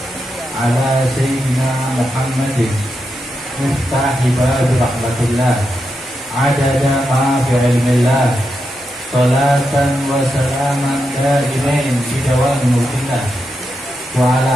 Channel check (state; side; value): normal; both; correlation 0.86